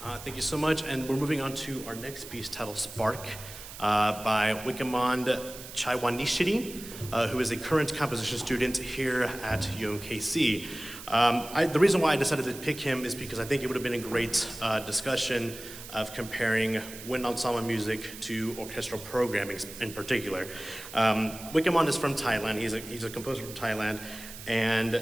Thank you so much, and we're moving on to our next piece titled Spark by Chaiwanichsiri, who is a current composition student here at UMKC. The reason why I decided to pick him is because I think it would have been a great discussion of comparing wind ensemble music to orchestral programming in particular. Wikamon is from Thailand. He's a composer from Thailand,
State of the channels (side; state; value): right; noise; hiss, 13 dB below the sound